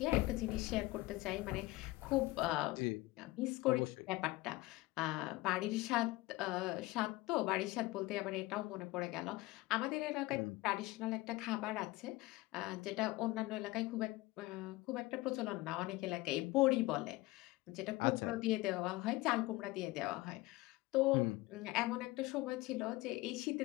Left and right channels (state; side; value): quieter; right; 20.1 dB